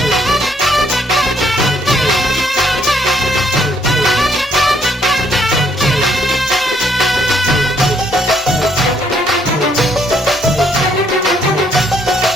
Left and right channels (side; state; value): both; normal; correlation 0.68